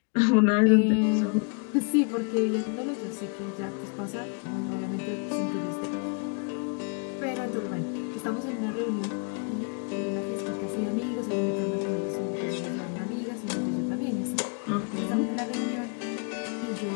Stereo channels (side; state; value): right; quieter; 37.3 dB